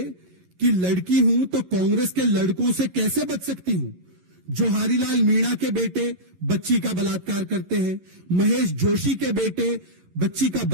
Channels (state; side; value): late; left; 11 ms